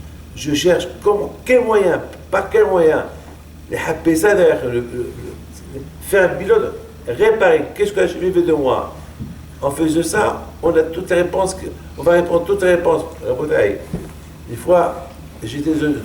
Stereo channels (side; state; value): both; identical; correlation 1.00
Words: Comment? Quel moyen? Par quel moyen? Faire un bilan, réparer. Qu'est-ce que Hachem veut de moi? En faisant ça, on a toutes les réponses. On va répondre toutes les réponses. Une fois, j'étais